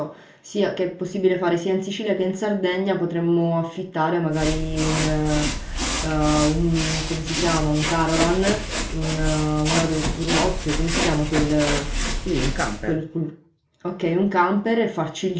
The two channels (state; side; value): identical; both; correlation 1.00